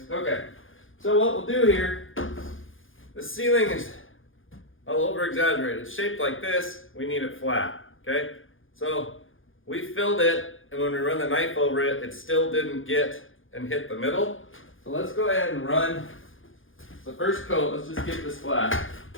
Okay, so what we'll do here, the ceiling is all over exaggerated. It's shaped like this, we need it flat, okay? So we filled it, and when we run the knife over it, it still didn't get and hit the middle. So let's go ahead and run the first coat, let's just get this flat.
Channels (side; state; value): right; late; 0.58 ms